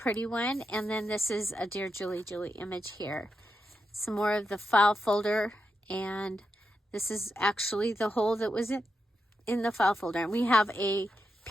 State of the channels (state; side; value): normal; both; correlation 0.86